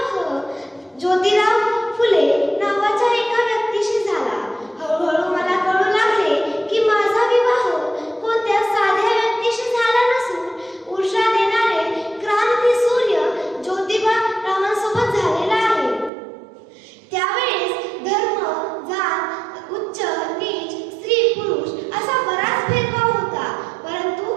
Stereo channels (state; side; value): drops out; left; at 16.1 s